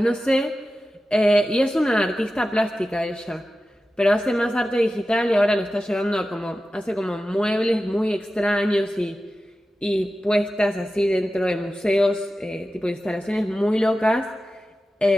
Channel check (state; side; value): normal; both; correlation 0.94